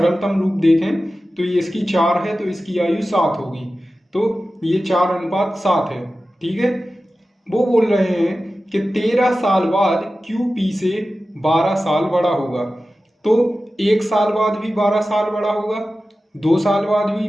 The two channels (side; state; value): both; normal; correlation 0.94